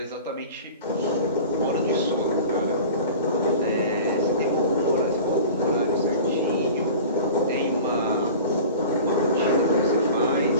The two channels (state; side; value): inverted; both; correlation -0.38